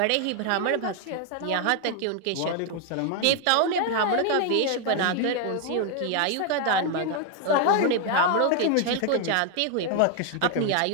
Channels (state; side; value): different; both; correlation 0.00